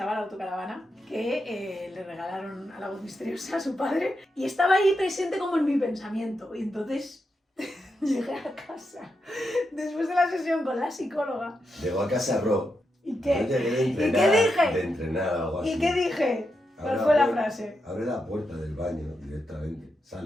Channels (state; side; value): normal; both; correlation 0.85